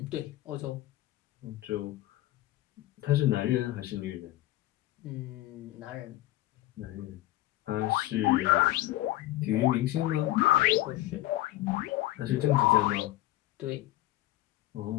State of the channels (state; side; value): quieter; right; 16.3 dB